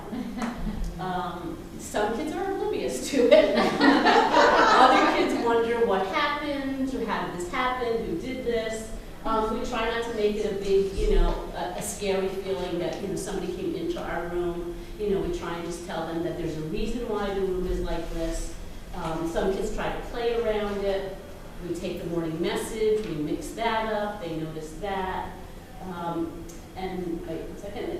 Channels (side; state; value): both; identical; correlation 1.00